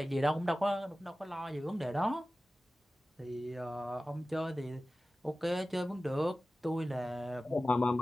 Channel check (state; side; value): normal; both; correlation 0.96